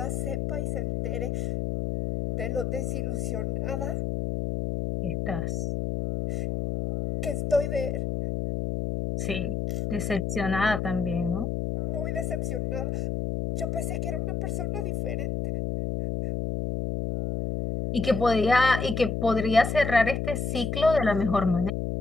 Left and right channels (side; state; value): left; noise; hum, 1 dB below the sound